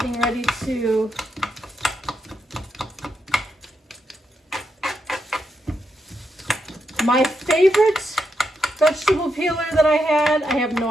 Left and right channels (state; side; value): normal; both; correlation 0.83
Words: ready to my favorite vegetable peeler that I have